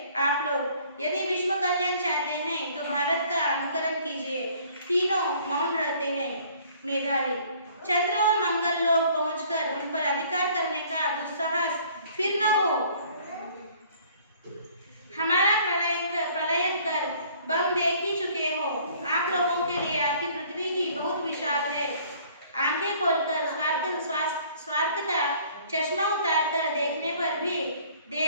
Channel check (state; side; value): inverted; both; correlation -0.56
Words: आप लोग, यदि विश्व कल्याण चाहते हैं तो भारत का अनुकरण कीजिए। तीनों मौन रहते हैं। मेधावी, चंद्र और मंगल लोक पहुंचकर उन पर अधिकार करने का दुस्साहस फिर न हो। हमारा प्रलय कर बम देख ही चुके हो। आप लोगों के लिए आपकी पृथ्वी ही बहुत विशाल है। आंखें खोलकर स्वार्थ का चश्मा उतारकर देखने पर भी